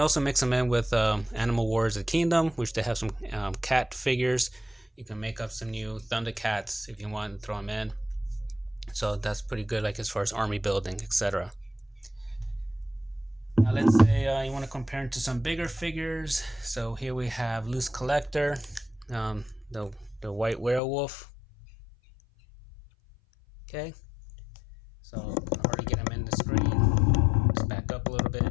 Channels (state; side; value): drops out; right; at 20.8 s